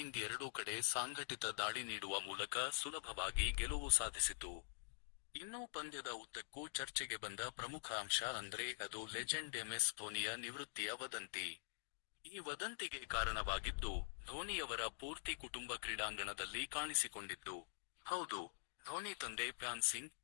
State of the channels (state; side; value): silent; right; digital silence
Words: ಎರಡೂ ಕಡೆ ಸಾಂಘಟಿತ ದಾಳಿ ನೀಡುವ ಮೂಲಕ ಸುಲಭವಾಗಿ ಗೆಲುವು ಸಾಧಿಸಿತು. ಇನ್ನು ಪಂದ್ಯದ ಉದ್ದಕ್ಕೂ ಚರ್ಚೆಗೆ ಬಂದ ಪ್ರಮುಖ ಅಂಶ ಅಂದ್ರೆ ಅದು ಲೆಜೆಂಡ್ ಎಂಎಸ್ ಧೋನಿಯ ನಿವೃತ್ತಿಯ ವದಂತಿ. ಈ ವದಂತಿಗೆ ಕಾರಣವಾಗಿದ್ದು, ಧೋನಿಯವರ ಪೂರ್ತಿ ಕುಟುಂಬ ಕ್ರೀಡಾಂಗಣದಲ್ಲಿ ಕಾಣಿಸಿಕೊಂಡಿದ್ದು. ಹೌದು, ಧೋನಿ ತಂದೆ ಫ್ಯಾನ್ ಸಿಂಗ್,